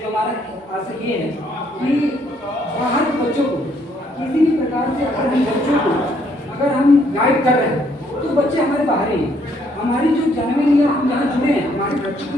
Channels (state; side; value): normal; both; correlation 0.68